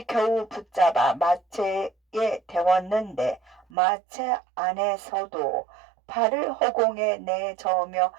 겨우 붙잡아 마차에 태웠는데 마차 안에서도 발을 허공에 내저으며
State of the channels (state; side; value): drops out; left; at 3.7 s